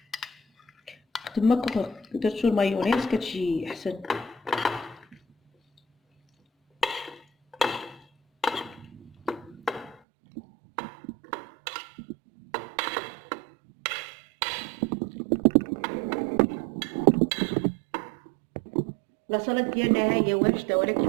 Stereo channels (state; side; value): drops out; left; at 10.0 s